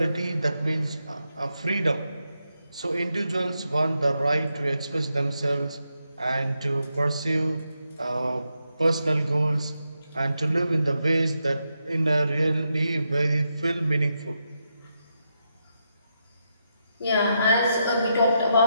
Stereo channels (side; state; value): both; inverted; correlation -0.84